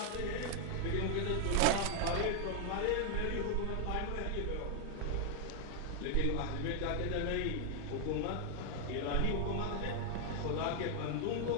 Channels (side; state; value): both; different; correlation 0.00